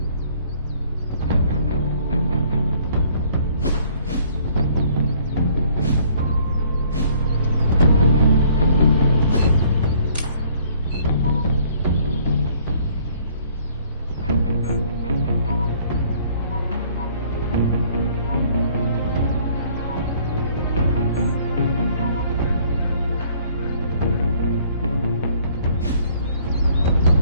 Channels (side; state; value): both; inverted; correlation -0.59